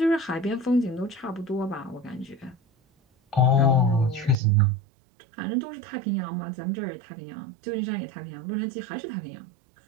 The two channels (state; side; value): drops out; left; at 4.4 s